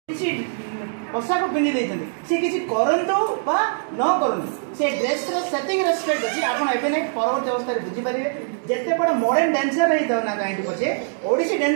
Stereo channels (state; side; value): silent; left; digital silence